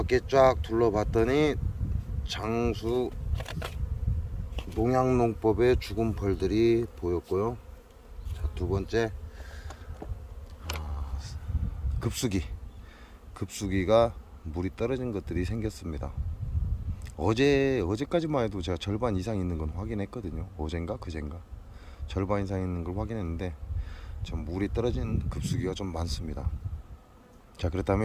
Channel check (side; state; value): both; identical; correlation 1.00